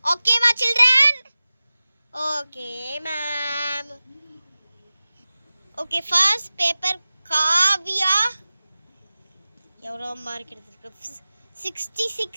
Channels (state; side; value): inverted; both; correlation -0.96